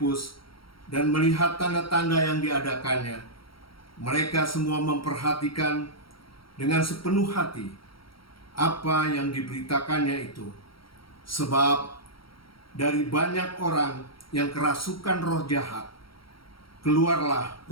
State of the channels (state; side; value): late; right; 0.74 ms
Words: dan melihat tanda-tanda yang diadakannya, mereka semua memperhatikan dengan sepenuh hati apa yang diberitakannya itu. Sebab dari banyak orang yang kerasukan roh jahat, keluarlah